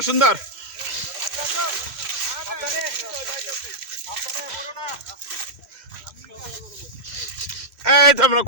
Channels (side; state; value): left; late; 3.1 ms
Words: সুন্দর। এই তো আমরা